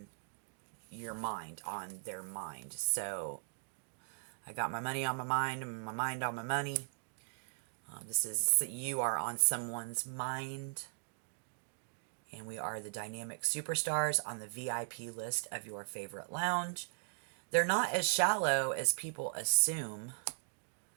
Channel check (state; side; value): silent; left; digital silence